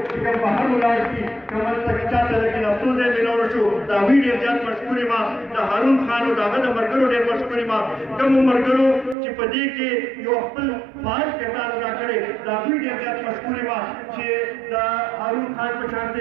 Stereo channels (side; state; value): left; drops out; at 9.2 s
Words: چې کوم بهر ولاړ دي کوم هلته کې چا سره کې لاسو ځای مېلاو شو د هغوی ډېر زیات مشکور یم د هارون خان او د هغه د ملګرو ډېر مشکور یم کومو ملګرو چې په دې کې یو خپل فعال کردار ادا کړی د هغوی ډېر زیات مشکور یم چې د هارون خان په شان